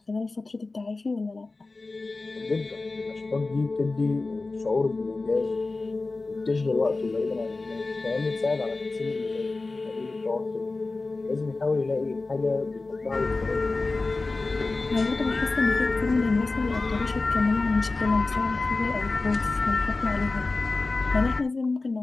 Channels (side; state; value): right; quieter; 3.5 dB